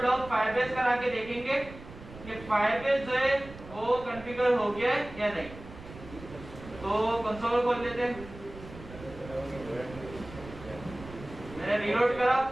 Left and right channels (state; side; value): noise; right; rumble, 16 dB below the sound